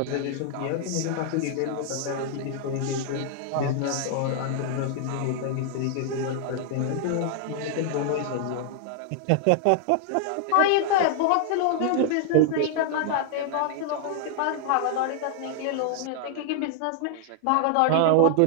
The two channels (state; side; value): different; both; correlation 0.00